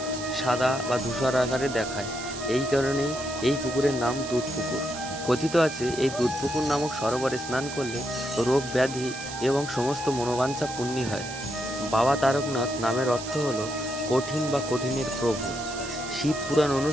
সাদা বা ধূসর আকারে দেখায়। এই কারণেই এই পুকুরের নাম দুধ পুকুর। কথিত আছে এই দুধ পুকুর নামক সরোবরে স্নান করলে রোগ ব্যাধি এবং সমস্ত মনোবাঞ্ছা পূর্ণ হয়। বাবা তারকনাথ নামের অর্থ হল কঠিন বা কঠিনের প্রভু। শিব পুরাণ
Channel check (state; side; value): noise; right; hiss, 11 dB below the sound